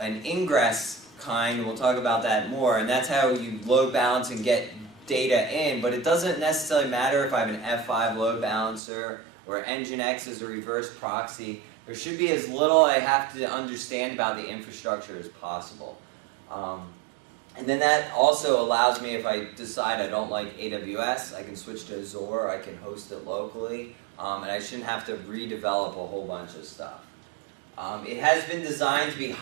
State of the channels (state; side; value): drops out; left; at 8.8 s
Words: Ingress kind, we'll talk about that more, and that's how you load balance and get data in, but it doesn't necessarily matter if I have an F5 load balancer or Nginx is a reverse proxy. There should be as little I have to understand about the infrastructure as possible. And then that also allows me, if I decide I don't like AWS, I can switch to Azure, I can host it locally, and I shouldn't have to redevelop a whole bunch of stuff. It has been designed to be